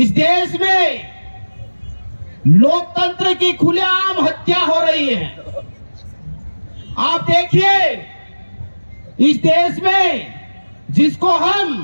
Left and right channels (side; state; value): both; inverted; correlation -1.00